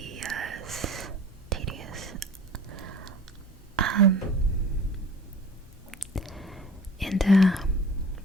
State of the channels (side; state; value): both; normal; correlation 0.44